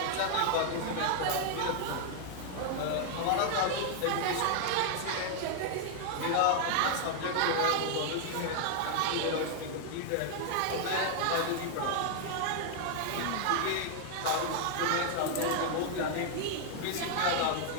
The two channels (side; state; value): both; different; correlation 0.00